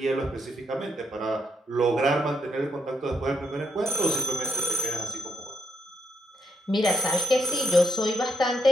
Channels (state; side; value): normal; both; correlation 0.80